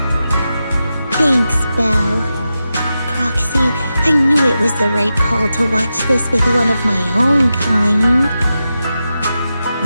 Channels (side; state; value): both; inverted; correlation -0.90